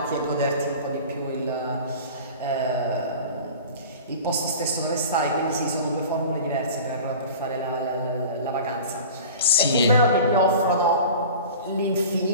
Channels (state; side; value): inverted; both; correlation -0.39